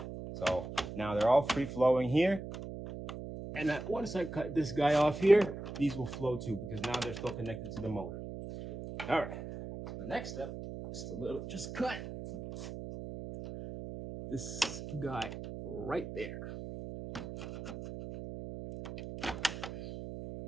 So now they're all free flowing here. And that once I cut this guy off here, these will flow too because now they're still connected to the motor. All right. The next step is to just cut this guy right there.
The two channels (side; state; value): right; noise; hum, 9 dB below the sound